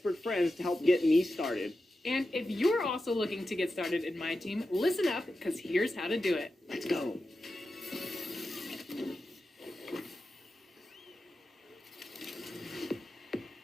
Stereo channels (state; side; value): normal; both; correlation 0.91